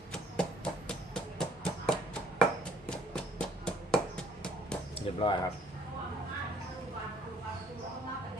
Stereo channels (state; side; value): normal; both; correlation 0.60